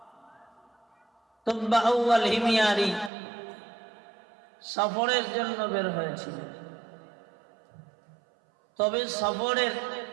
তুব্বা আউয়াল হিমিয়ারি সফরের জন্য বের হয়েছিল, তবে সফরের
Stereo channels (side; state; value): left; drops out; at 3.1 s